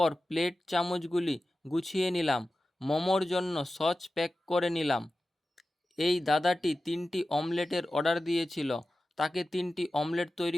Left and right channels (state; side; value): normal; both; correlation 0.94